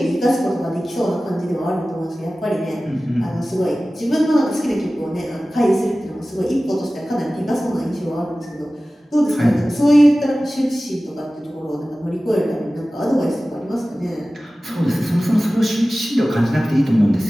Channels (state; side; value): normal; both; correlation 0.97